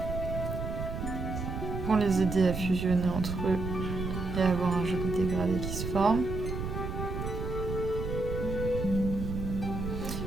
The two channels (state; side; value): noise; right; rumble, 4 dB below the sound